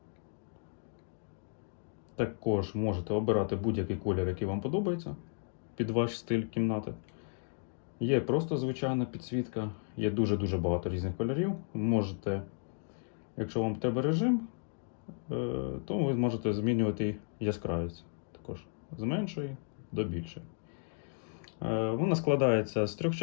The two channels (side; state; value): right; silent; 55 dB below the other